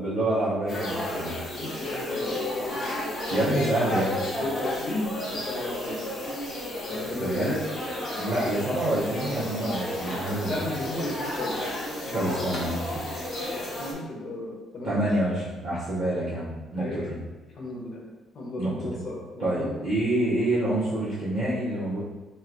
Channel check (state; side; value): normal; both; correlation 0.70